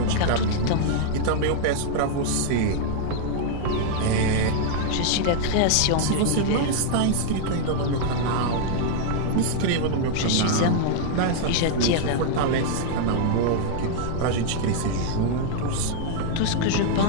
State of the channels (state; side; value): different; both; correlation -0.01